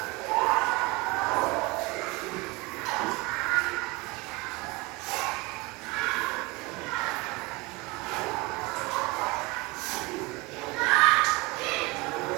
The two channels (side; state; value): left; quieter; 24.1 dB